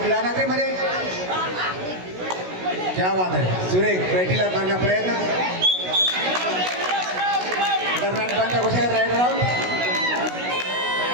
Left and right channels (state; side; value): late; left; 16 ms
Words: नगरीमध्ये. क्या बात आहे. सुरेख बैठीला मारण्या प्रयत्न. दरम्यान पंच घोषित राईड राऊंड